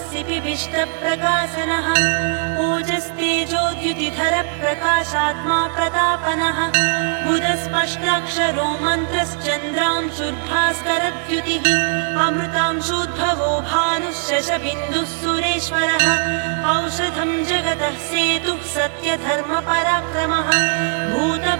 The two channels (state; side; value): silent; left; 57 dB below the other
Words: सिपिविष्टप्रकाशनः ओजस्तेजोद्युतिधरः प्रकाशात्मा प्रतापनः बुधस्पष्टाक्षरो मन्त्रश्चन्द्रांशुर्भास्करद्युतिः अमृतांशूद्भवो भानुः शशबिन्दुः सुरेश्वरः औषधं जगतः सेतुः सत्यधर्मपराक्रमः